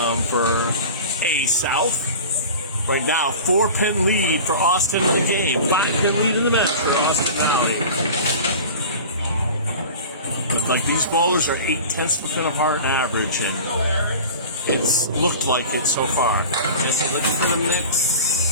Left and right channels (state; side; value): inverted; both; correlation -0.36